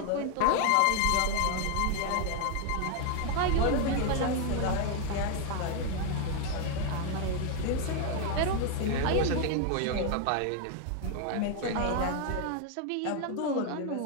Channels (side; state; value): both; different; correlation 0.01